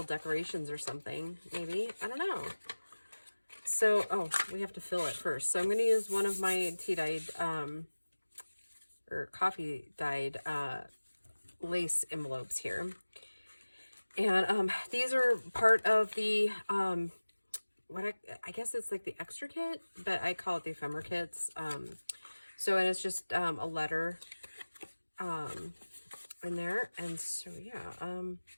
decorations or something, maybe. I don't know. So, oh, we have to fill it first. So I'm going to use one of my tea-dyed, or coffee-dyed lace envelopes here. And these are part of the, what I guess it's like the extra kit, but I call it the ephemera kits. So, and it's just a letter in there. And so, yeah,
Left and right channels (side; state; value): both; inverted; correlation -1.00